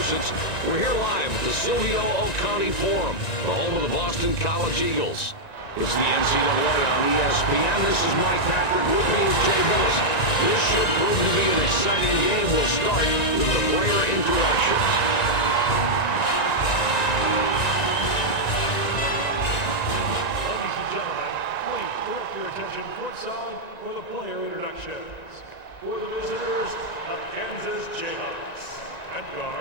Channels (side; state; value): right; late; 1.9 ms